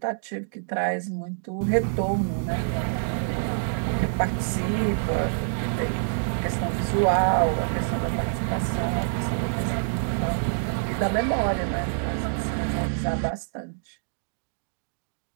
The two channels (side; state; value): left; silent; digital silence